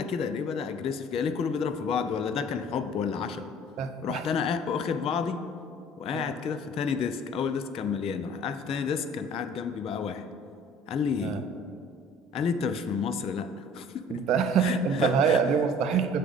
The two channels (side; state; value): both; normal; correlation 0.50